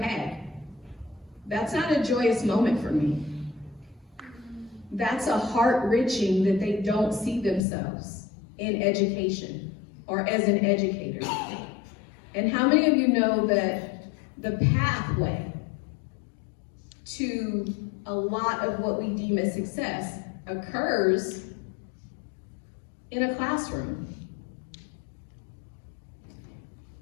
that's not a joyous moment for me. That's a heart-wrenching that they don't see themselves in education or as an educator. And how many of you know that the pathway to a lot of what we deem as success occurs in a classroom?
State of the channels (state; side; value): drops out; right; at 7.6 s